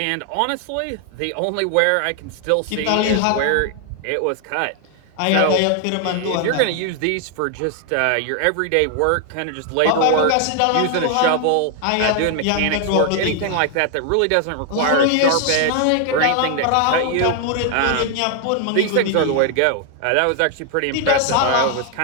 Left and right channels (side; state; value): both; different; correlation 0.00